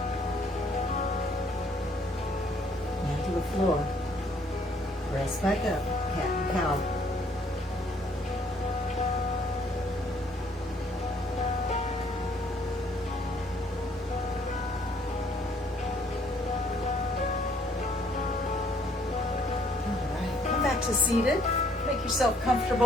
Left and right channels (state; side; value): normal; both; correlation 0.64